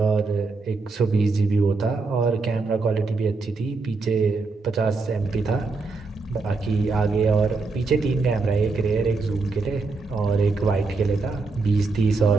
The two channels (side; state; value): left; quieter; 3.9 dB